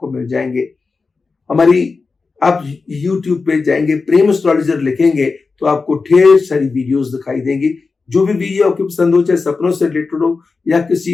मिल जाएंगे। हमारी आप YouTube पे जाएंगे, प्रेम एस्ट्रोलॉजर लिखेंगे तो आपको ढेर सारी वीडियोस दिखाई देंगी। जो भी वीडियो आपको पसंद हो, चाहे सपनों से रिलेटेड हो या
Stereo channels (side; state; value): right; quieter; 4.3 dB